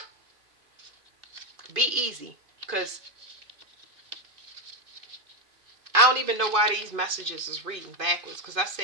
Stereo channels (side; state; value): left; late; 2.5 ms